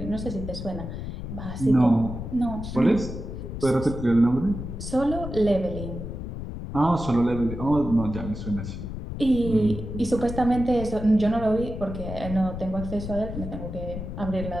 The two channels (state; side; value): noise; left; rumble, 7 dB below the sound